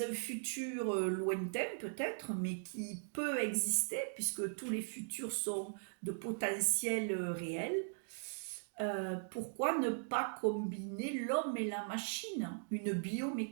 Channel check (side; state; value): left; silent; digital silence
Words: un futur lointain peut-être, mais qui peut exister, puisque tous les futurs sont de potentiel réel, pourquoi ne pas combiner l'homme et la machine, une